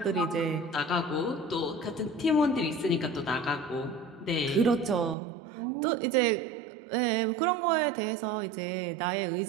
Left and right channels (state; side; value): drops out; left; at 5.2 s